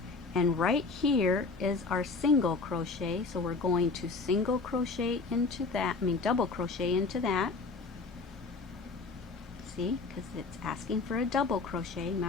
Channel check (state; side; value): quieter; right; 4.1 dB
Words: and right here is our single crochet. So we're going to single crochet into that, double crochet into that. See, because it's asking for a double crochet.